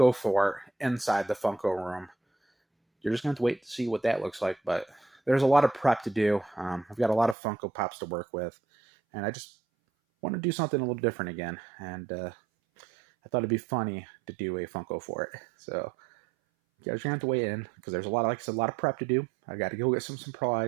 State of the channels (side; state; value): left; drops out; at 7.4 s